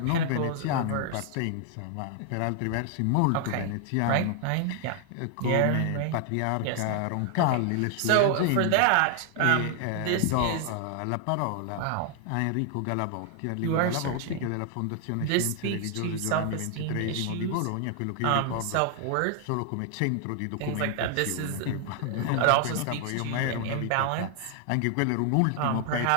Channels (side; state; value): both; different; correlation 0.00